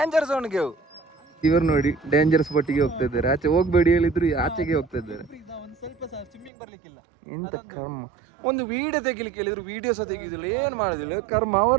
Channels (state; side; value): drops out; left; at 6.5 s